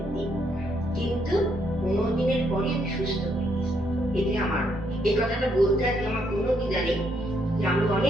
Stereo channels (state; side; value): normal; both; correlation 0.74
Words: দিন, কিন্তু 15 দিনের পরে আমি সুস্থ হয়ে গেছি। এতে আমার এই কথাটা বলতে আজকে আমার কোনো দ্বিধা নেই যে আমি